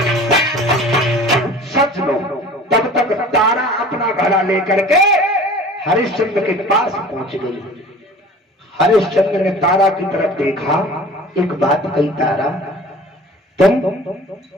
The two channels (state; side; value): normal; both; correlation 0.43